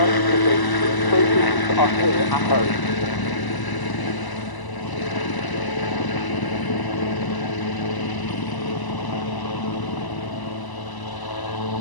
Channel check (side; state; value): right; late; 1.0 ms